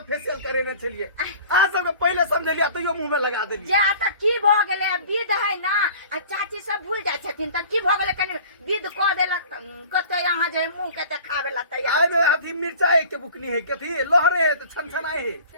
फेशियल करेने छलिए आज सब पहले समझलिए तो यो मुंह में लगा देलिए जे त की भ गेले विध है ना आ चाची सब भूल जाय छथिन त की भ गेले कनी विध क देलक कते यहां जे मुंह के देखावे ला तैयार आइ में अथी मिर्चाई के बुकनी है कथी लहरे है तो छनछनाई है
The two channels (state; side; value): inverted; both; correlation -0.45